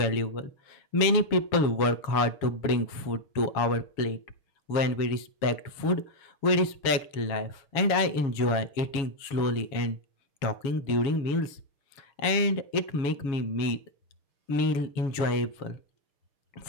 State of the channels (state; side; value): late; right; 7.2 ms